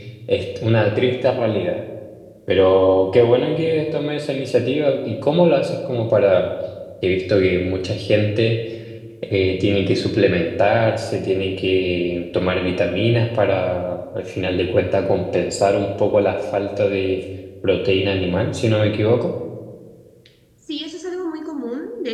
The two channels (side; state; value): both; identical; correlation 1.00